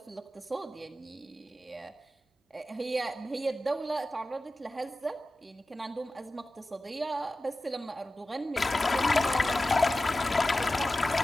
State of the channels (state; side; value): normal; both; correlation 0.94